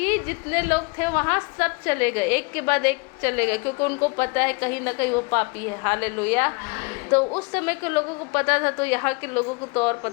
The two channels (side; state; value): right; quieter; 30.7 dB